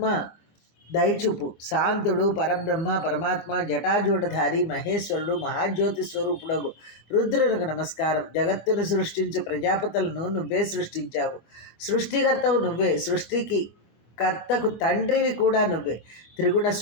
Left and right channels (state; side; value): late; right; 25 ms